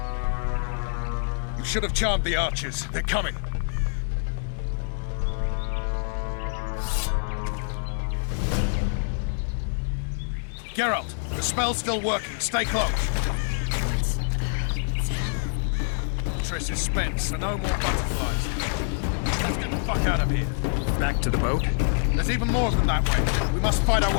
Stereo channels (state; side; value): silent; right; 56 dB below the other